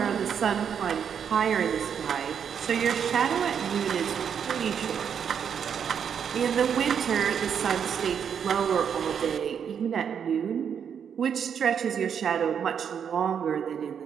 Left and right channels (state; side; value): quieter; left; 7.7 dB